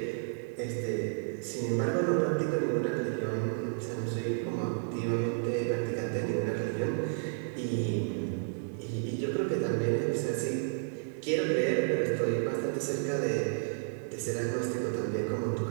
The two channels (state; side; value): silent; left; 57 dB below the other